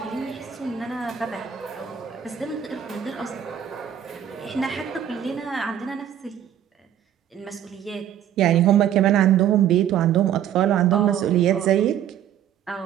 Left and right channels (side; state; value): left; quieter; 10.1 dB